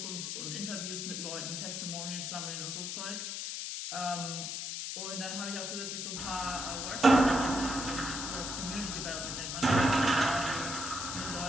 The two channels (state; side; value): noise; left; hiss, 4 dB below the sound